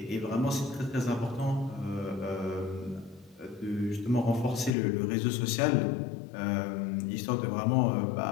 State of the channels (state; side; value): drops out; right; at 4.7 s